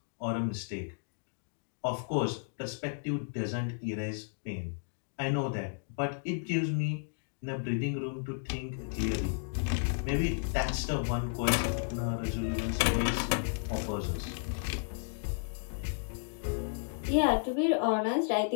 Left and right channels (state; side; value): silent; right; digital silence